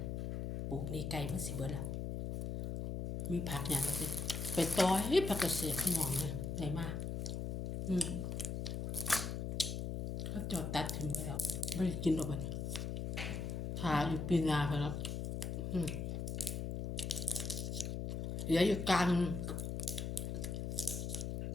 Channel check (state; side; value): noise; left; hum, 2 dB below the sound